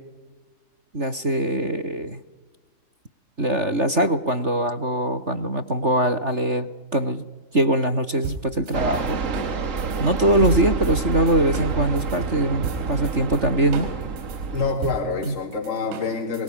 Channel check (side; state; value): left; late; 3.4 ms